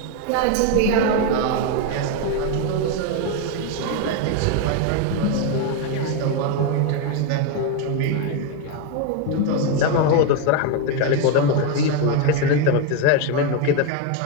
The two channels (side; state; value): both; different; correlation 0.02